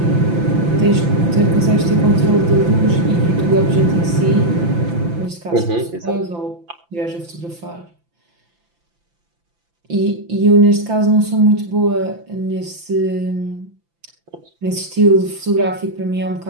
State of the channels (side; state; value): left; late; 5.9 ms